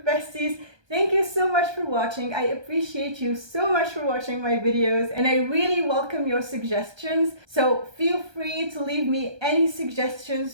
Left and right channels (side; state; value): left; late; 1.2 ms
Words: besties. Thank you so much for watching. I appreciate you so much for watching my videos, and I really welcome your suggestions. So feel free to leave me any